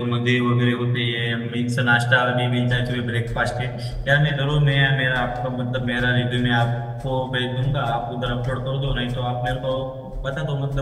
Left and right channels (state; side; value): identical; both; correlation 1.00